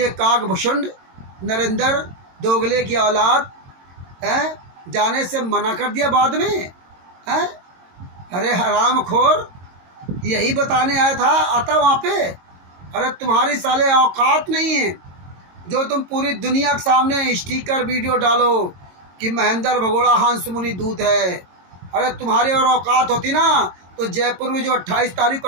काकभूषण नरेंद्र दोगले की औलाद है, जाने से मना कर दिया बाद में है। अरे हरामखोर, यही बताने आया था, आता वहाँ पे। अरे तुम्हारी साले औकात नहीं है जो तुम पूरी दुनिया के सामने स्टिकर वीडियो डालो कि महेंद्र भगोड़ा हंस मुनि दूत है। अरे तुम्हारी और औकात होती ना तो जयपुर में जो 28 तारीख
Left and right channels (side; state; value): left; late; 22 ms